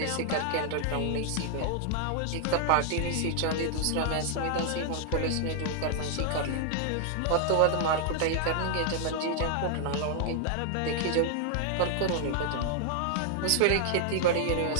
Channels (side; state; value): both; different; correlation 0.00